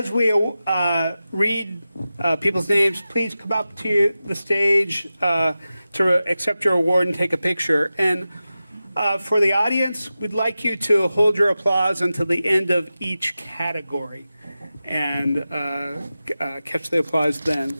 we read people's names, please come up to the stage to accept your award and take a picture. And for the audience, we'd like you to hold your applause until the end of each category and catch the applause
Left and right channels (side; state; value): both; inverted; correlation -0.94